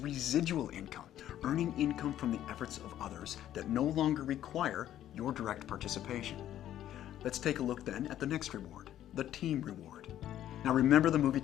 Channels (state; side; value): quieter; right; 11.9 dB